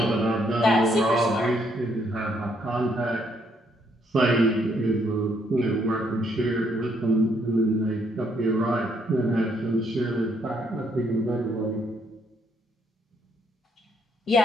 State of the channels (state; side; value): normal; both; correlation 0.71